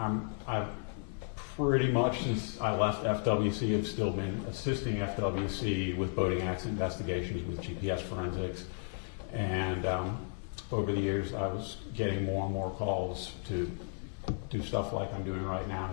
pretty much since I left FWC have still been assisting FWC with boating accident investigations with GPS forensics, and over the years I was getting more and more calls to do stuff like I'm doing right now,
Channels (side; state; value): right; silent; 55 dB below the other